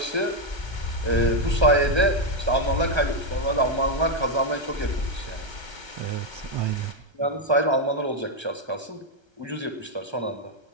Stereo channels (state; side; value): late; left; 1.3 ms